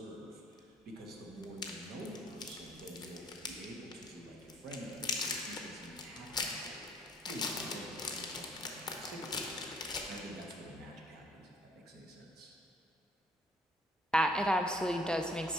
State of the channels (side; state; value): both; normal; correlation 0.62